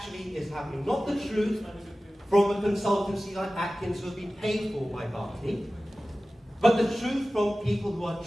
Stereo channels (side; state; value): both; normal; correlation 0.96